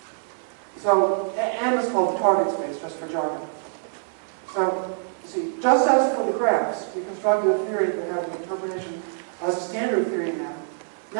So M is called the target space, just for jargon. So, you see, just as for the graphs, we constructed a theory that had an interpretation as a standard theory in M.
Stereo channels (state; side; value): silent; left; 61 dB below the other